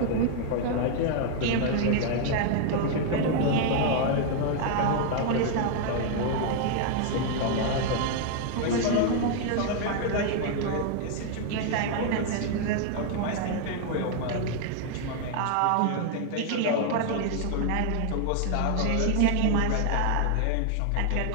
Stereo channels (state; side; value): different; both; correlation 0.00